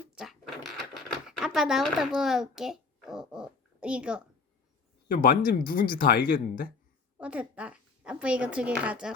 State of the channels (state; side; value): quieter; right; 4.3 dB